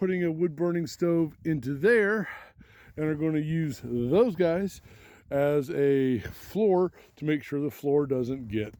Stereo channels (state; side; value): identical; both; correlation 1.00